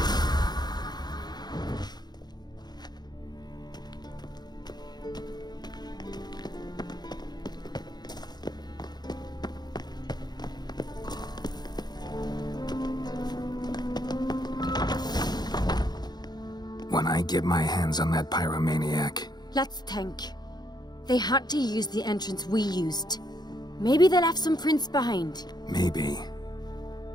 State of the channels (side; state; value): right; late; 0.20 ms